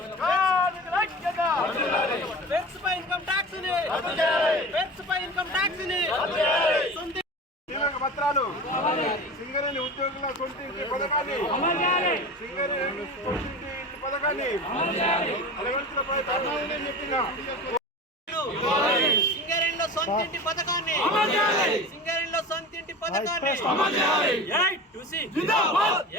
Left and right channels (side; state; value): both; normal; correlation 0.32